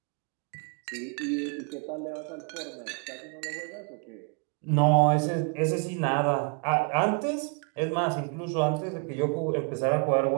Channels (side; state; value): left; quieter; 35.2 dB